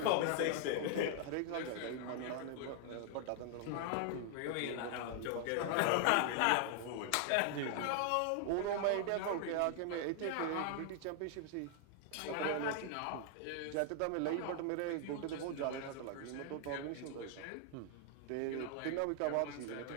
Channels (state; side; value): different; both; correlation 0.00